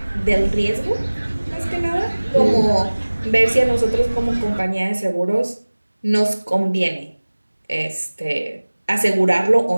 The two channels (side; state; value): both; inverted; correlation -1.00